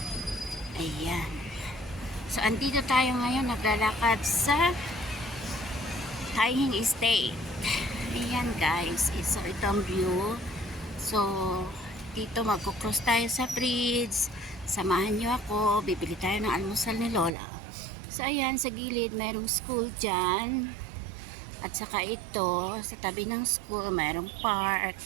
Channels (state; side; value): drops out; left; at 17.3 s